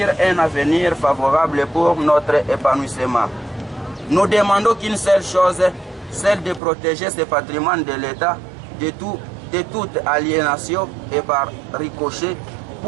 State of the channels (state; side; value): drops out; left; at 6.6 s